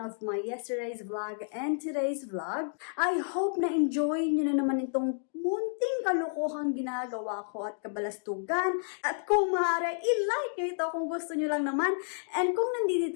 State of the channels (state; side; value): silent; right; digital silence